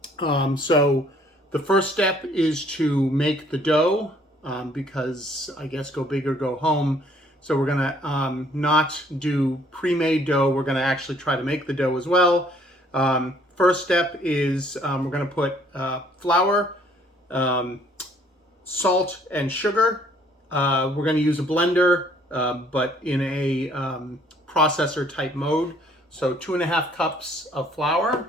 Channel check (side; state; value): both; normal; correlation 0.61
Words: So the first step is to make the dough, because I guess go big or go home. So we're gonna not do pre-made dough. We're gonna actually try to make the dough as well. First step is we're gonna put flour, salt, and sugar. We're gonna use a blender, but in a processor type mode. So 2.5 cups of flour.